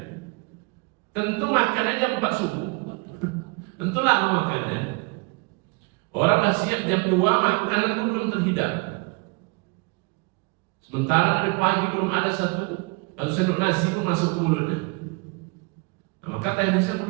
Tentu makanannya 4 suku. Tentu lama makannya. Orang masih jam 2, makanan itu belum terhidang. Sementara dari pagi belum ada satu sendok nasi itu masuk ke mulutnya. Nah, maka teknisnya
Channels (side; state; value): left; quieter; 29.9 dB